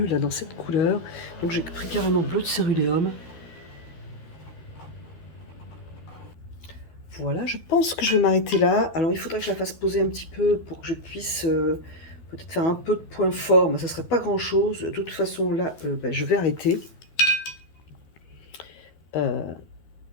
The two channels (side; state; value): right; late; 12 ms